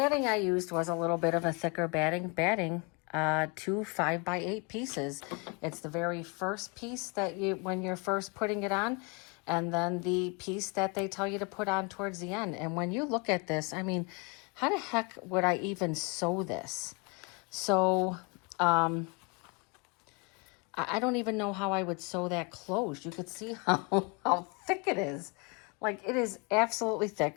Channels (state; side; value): quieter; right; 30.8 dB